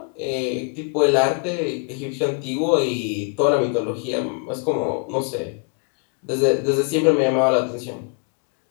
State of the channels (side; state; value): right; quieter; 38.6 dB